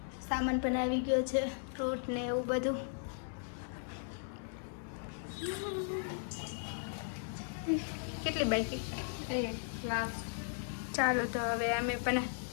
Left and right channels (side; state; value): right; silent; 53 dB below the other